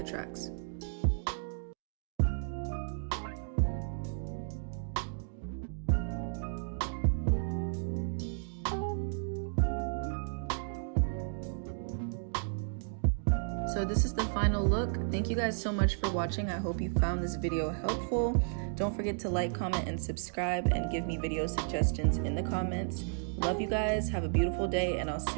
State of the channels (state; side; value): silent; left; digital silence